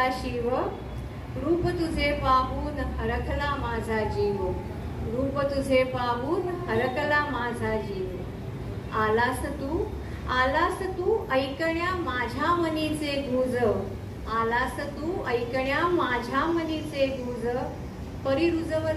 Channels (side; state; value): both; identical; correlation 1.00